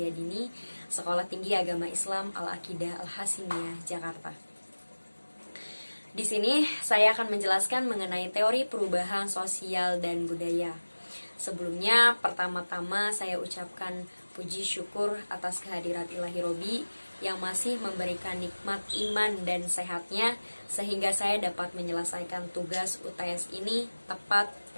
Dini, Sekolah Tinggi Agama Islam Al-Aqidah Al-Hasimiyah, Jakarta. Di sini saya akan menjelaskan mengenai teori perubahan sosial dan budaya. Sebelumnya, pertama-tama saya ucapkan puji syukur atas kehadirat Ilahi Robi yang masih memberikan nikmat iman dan sehatnya sehingga saya dapat menyelesaikan tugas UTS ini tepat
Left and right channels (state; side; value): inverted; both; correlation -1.00